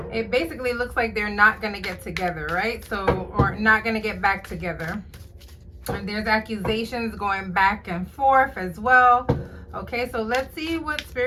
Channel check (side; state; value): both; identical; correlation 1.00